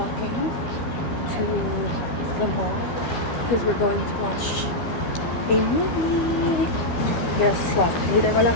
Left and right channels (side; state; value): right; late; 12 ms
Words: to the mall because we're going to watch a movie. Guess what? Hindi ko